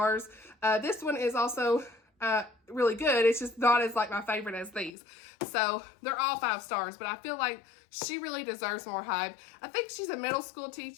This one is also really good. It's just not as like my favorite as these. So they're all 5 stars, but I feel like she really deserves more hype. I think she's a middle school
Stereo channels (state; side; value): drops out; right; at 4.9 s